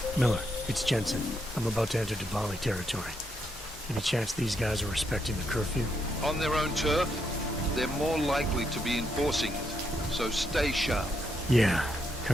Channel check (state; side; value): normal; both; correlation 0.79